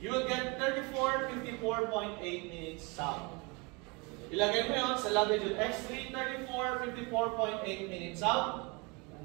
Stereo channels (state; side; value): quieter; left; 29.0 dB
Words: You will get 34, 54.8 minutes south. Ilagay mo yun sa latitude X3, 34, 54.8 minutes south.